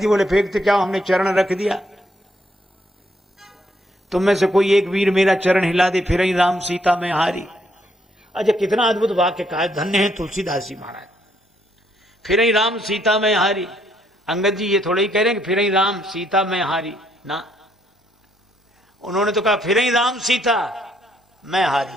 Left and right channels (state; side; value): normal; both; correlation 0.71